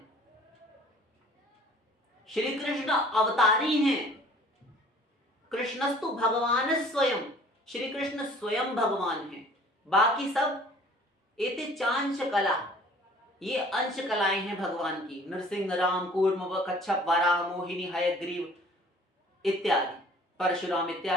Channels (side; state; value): both; normal; correlation 0.52